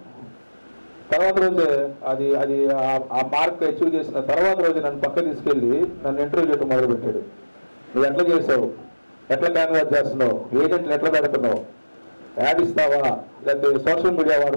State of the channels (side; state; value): both; inverted; correlation -1.00